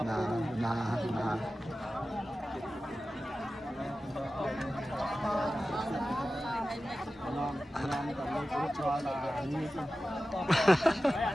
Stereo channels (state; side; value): normal; both; correlation 0.94